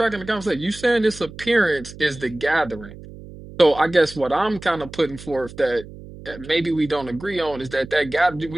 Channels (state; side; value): noise; right; hum, 16 dB below the sound